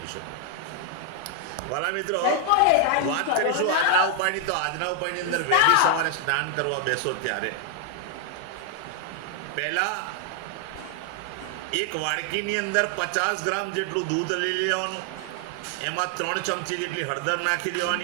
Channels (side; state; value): both; different; correlation 0.00